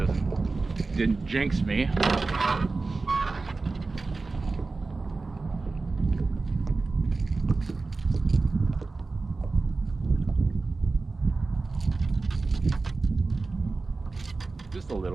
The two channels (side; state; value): left; quieter; 3.8 dB